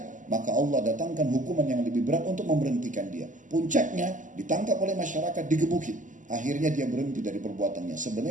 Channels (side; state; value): left; late; 0.37 ms